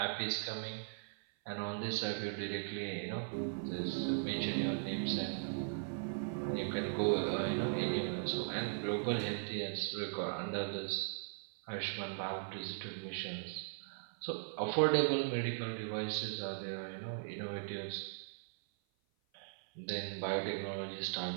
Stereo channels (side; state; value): left; silent; 52 dB below the other